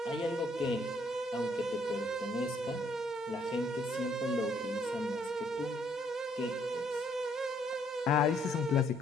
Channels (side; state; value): both; normal; correlation 0.67